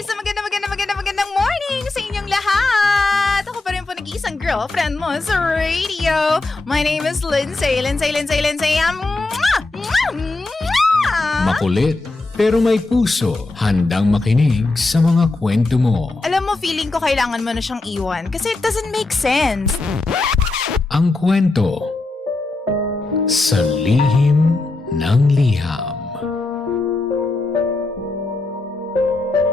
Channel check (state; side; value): quieter; right; 3.2 dB